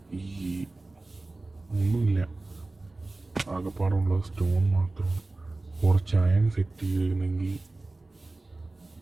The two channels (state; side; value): quieter; left; 3.1 dB